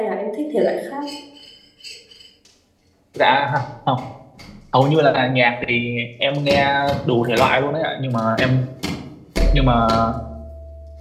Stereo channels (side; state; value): both; identical; correlation 1.00